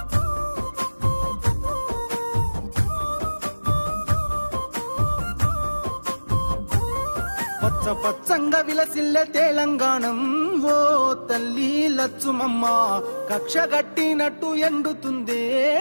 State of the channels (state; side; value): inverted; both; correlation -1.00